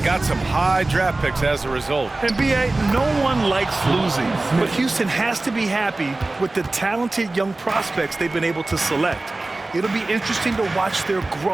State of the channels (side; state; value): left; quieter; 3.0 dB